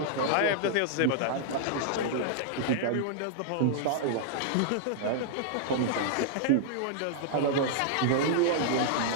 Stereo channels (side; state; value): both; different; correlation -0.01